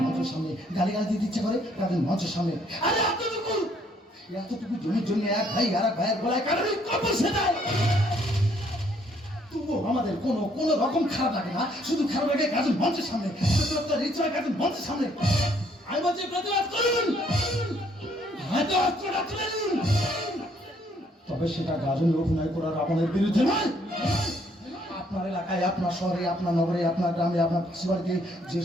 মঞ্চের সামনে গালি গালা দিতে ইচ্ছে করে গাজন মঞ্চের সামনে। আরে এতটুকু জমির জন্য এক ভাই আর এক ভাইয়ের গলায় কারোরই কবর সেটাই। তবুও আমাদের কোনো রকম খারাপ লাগে না, শুধু খারাপ লাগে গাজন মঞ্চের সামনে, গাজন মঞ্চের সামনে। আমি বলছি প্রতিবাদ করুন, হয়তো অস্ত্রটা তুলে নিন, তবে সেটা গাজনে অভিনয় করার আপনাদের বিরুদ্ধে নয়। আপনার এলাকায়, আপনার শহরে, আপনার নগরে, আপনার গ্রামে, আপনার পাশে যে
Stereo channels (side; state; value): both; normal; correlation 0.66